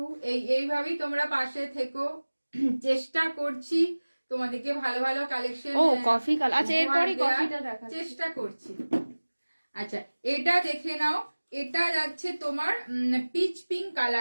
এইভাবেই তোমরা পাশে থেকো, চেষ্টা করছি তোমাদেরকে ভালো ভালো কালেকশন। ও কফি কালার, আচ্ছা এরপরই কফিটা দেখা চেষ্টা করছি। আচ্ছা এটা দেখে নাও, এটা যাচ্ছে তোমার পিচ পিঙ্ক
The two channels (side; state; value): both; inverted; correlation -1.00